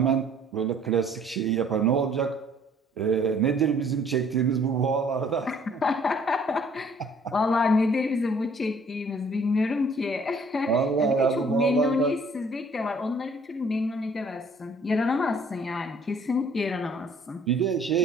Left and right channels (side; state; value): both; normal; correlation 0.58